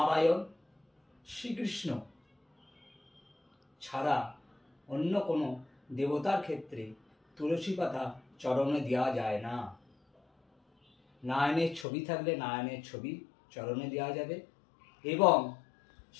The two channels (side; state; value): right; drops out; at 11.9 s